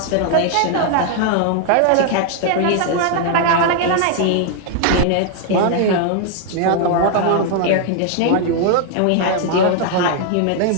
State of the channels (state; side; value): different; both; correlation 0.00